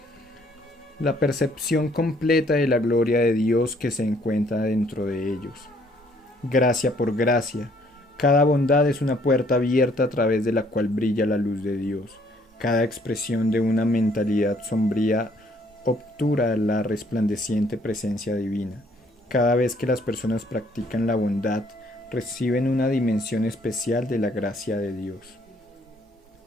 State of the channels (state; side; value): normal; both; correlation 0.64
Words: La percepción completa de la gloria de Dios que se encuentra dentro de ellos. Gracia por gracia, cada bondad es una puerta abierta a través de la cual brilla la luz de Dios. Cada expresión de una mentalidad sombría obtura la resplandeciente presencia divina. Cada vez que las personas practican la bondad, reciben una dimensión especial de la gracia de Dios.